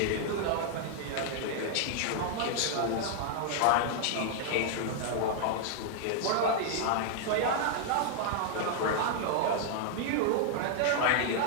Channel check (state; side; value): different; both; correlation 0.00